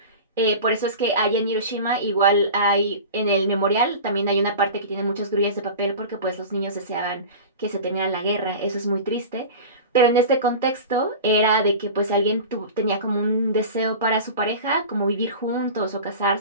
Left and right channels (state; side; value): inverted; both; correlation -0.33